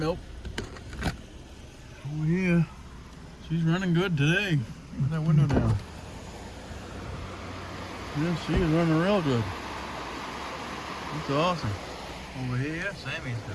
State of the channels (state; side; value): identical; both; correlation 1.00